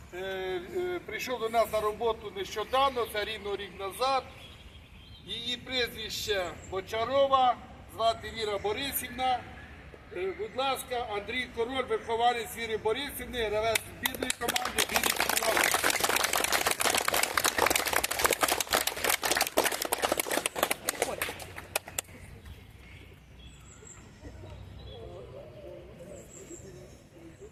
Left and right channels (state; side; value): identical; both; correlation 1.00